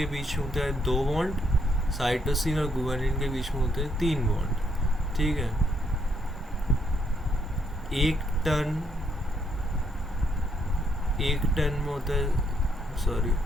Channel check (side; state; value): both; normal; correlation 0.73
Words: बीच में होता है 2 बॉन्ड, साइटोसिन और गुआनिन के बीच में होते हैं 3 बॉन्ड, ठीक है। एक टन में होता है, सॉरी